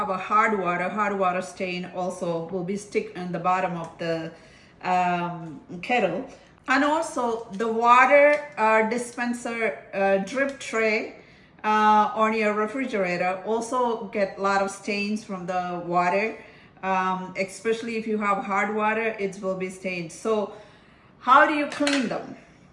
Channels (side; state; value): both; identical; correlation 1.00